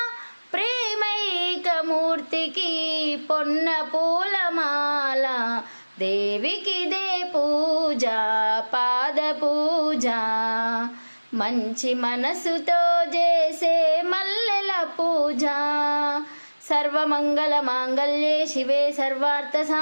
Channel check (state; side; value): inverted; both; correlation -1.00